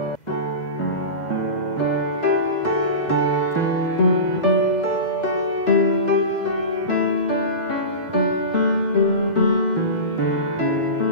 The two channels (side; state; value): right; late; 2.0 ms